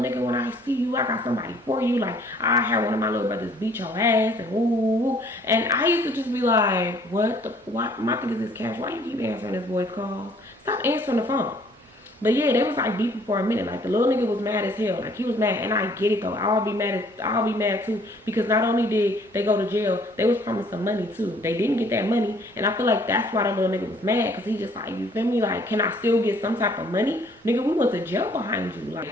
when I see you, I got somebody for you. Like, I had one of my little brothers beat your ass, and woo. And I used to just be like, what? My thing is this, Cash, why you keep answering this boy's calls? Stop answering the phone. But yeah, they was like beefing for a minute. Like, the little nigga was mad as hell. Like, he was mad, and I get it though. I'll be mad too, because not only did they go to jail, they was promised some money too. They didn't get that money, and I feel like that's why the little nigga was mad, because he just like, you feel me? Like, can I still get some type of money? Nigga, we went to jail behind you. Like,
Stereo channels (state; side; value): normal; both; correlation 0.59